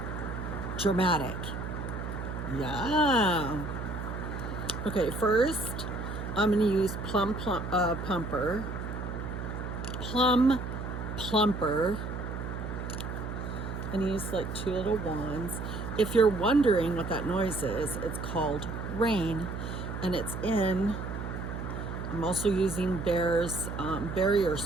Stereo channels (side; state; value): right; noise; hum, 6 dB below the sound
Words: dramatic. Yeah. Okay, first I'm gonna use Plum Plumper. And use like 2 little wands. If you're wondering what that noise is, it's called rain, and it's in. I'm also using Bear's barrier